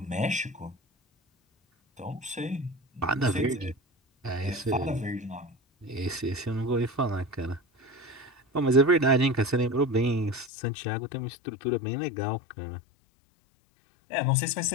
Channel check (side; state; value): right; drops out; at 10.5 s